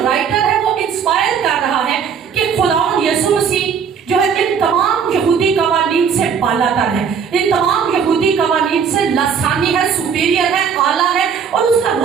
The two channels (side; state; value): left; quieter; 6.9 dB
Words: राइटर है वो इंस्पायर कर रहा है कि खुदावंद यीशु मसीह जो है इन तमाम यहूदी कवानीन से बालातर है, इन तमाम यहूदी कवानीन से लसानी है, सुपीरियर है, आला है, और उसका